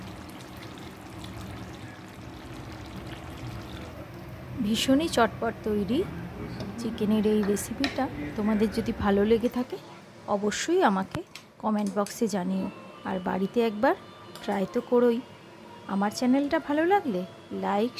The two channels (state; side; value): identical; both; correlation 1.00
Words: ভীষণই চটপট তৈরি চিকেনের এই রেসিপিটা তোমাদের যদি ভালো লেগে থাকে অবশ্যই আমাকে কমেন্ট বক্সে জানিও। আর বাড়িতে একবার ট্রাই তো করোই। আমার চ্যানেলটা ভালো লাগলে লাইক,